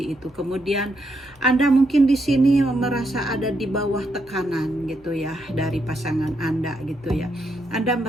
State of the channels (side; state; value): both; normal; correlation 0.79